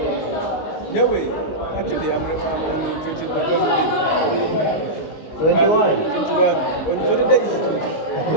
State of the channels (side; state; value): right; late; 19 ms